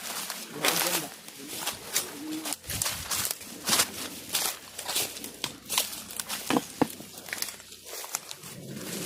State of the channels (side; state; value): both; identical; correlation 1.00